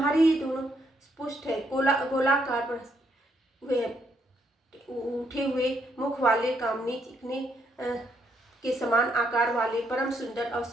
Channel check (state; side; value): normal; both; correlation 0.74